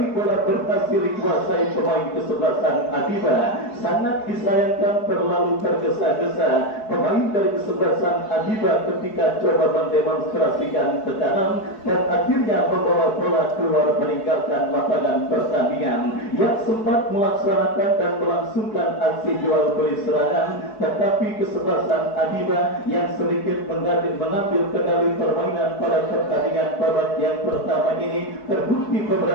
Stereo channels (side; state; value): right; late; 4.7 ms